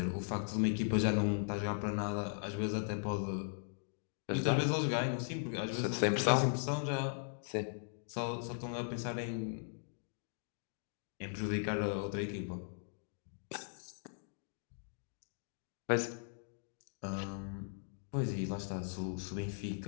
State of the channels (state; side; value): silent; right; digital silence